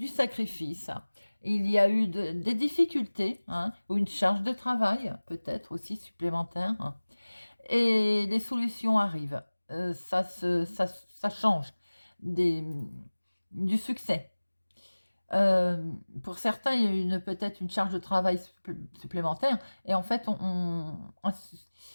sacrifice, il y a eu des difficultés, hein, ou une charge de travail, peut-être aussi supplémentaire. et les solutions arrivent. Ça change des, du succès. Pour certains, il y a peut-être une charge de travail supplémentaire et en fait, on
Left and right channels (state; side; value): inverted; both; correlation -1.00